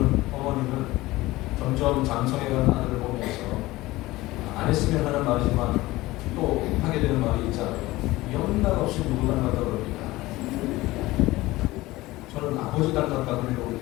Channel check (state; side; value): quieter; right; 18.8 dB